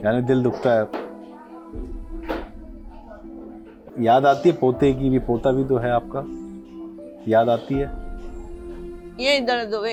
यानी दिल दुखता है। याद आती है पोते की भी? पोता भी तो है आपका, याद आती है? ये दर्द हुए,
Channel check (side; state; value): both; identical; correlation 1.00